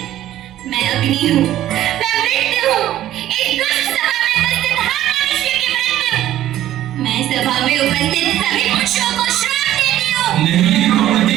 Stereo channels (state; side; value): quieter; left; 13.0 dB